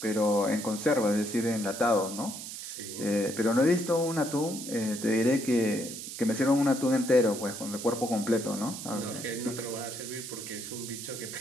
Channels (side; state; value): right; noise; hiss, 9 dB below the sound